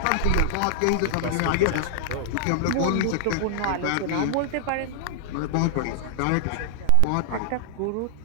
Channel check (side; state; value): both; different; correlation -0.01